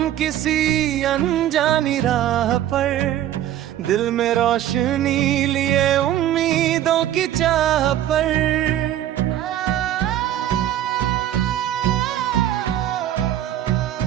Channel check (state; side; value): quieter; left; 12.1 dB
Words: किसी अनजानी राह पर, दिल में रोशनी लिए उम्मीदों की चाह पर।